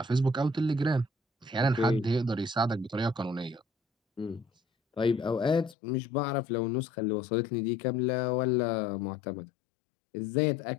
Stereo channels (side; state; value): right; drops out; at 5.8 s